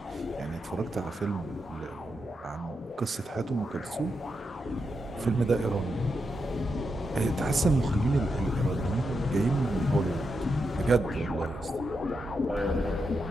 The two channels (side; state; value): both; normal; correlation 0.85